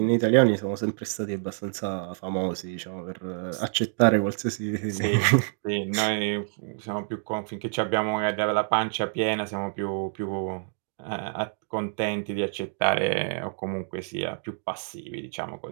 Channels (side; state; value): left; silent; 60 dB below the other